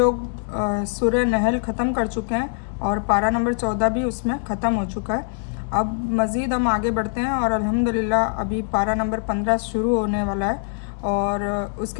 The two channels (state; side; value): silent; right; 64 dB below the other